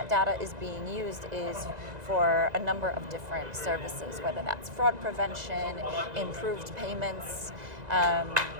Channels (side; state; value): left; late; 2.0 ms